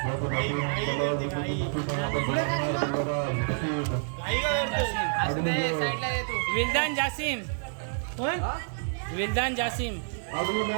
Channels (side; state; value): left; silent; digital silence